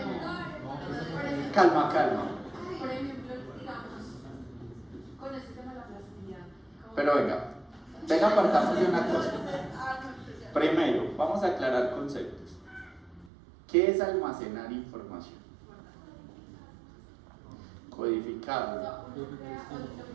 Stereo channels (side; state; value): left; drops out; at 13.3 s